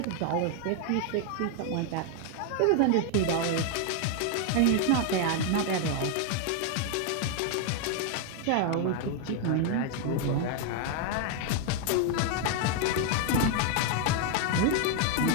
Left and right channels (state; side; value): different; both; correlation 0.01